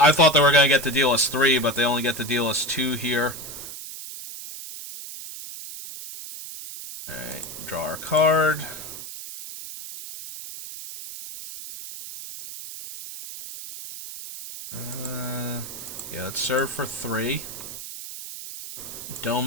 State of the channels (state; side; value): noise; right; hiss, 11 dB below the sound